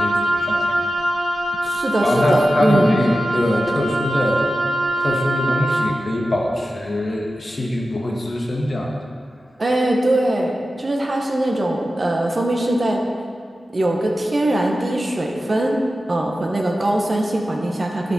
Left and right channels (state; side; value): normal; both; correlation 0.93